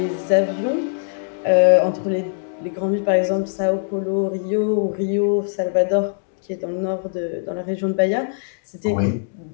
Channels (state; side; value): silent; right; digital silence